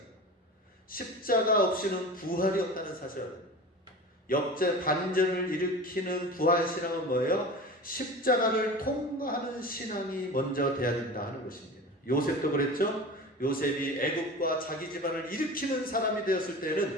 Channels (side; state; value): both; normal; correlation 0.34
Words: 십자가 없이는 부활이 없다는 사실을 역대 반전을 일으키는 부활신앙은 뭐예요? 십자가를 통과하는 신앙이 먼저 돼야 된다 하는 것입니다. 요셉도 그랬죠? 요셉이 애국과 자기 집안을 일으키는 사람이 되었을